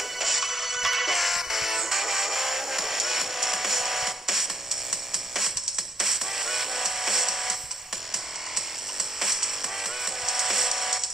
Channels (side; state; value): both; normal; correlation 0.71